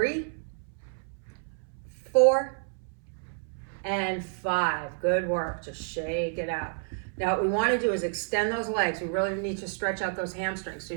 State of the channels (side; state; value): left; silent; 58 dB below the other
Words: 4, and 5. Good work, just shake it out. Now what we wanna do is extend those legs. We really need to stretch out those hamstrings. So